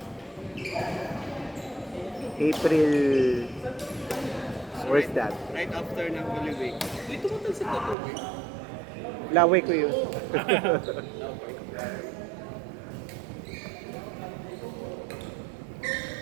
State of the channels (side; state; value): left; drops out; at 8.0 s